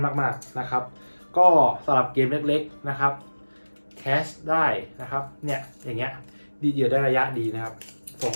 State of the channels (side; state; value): both; inverted; correlation -1.00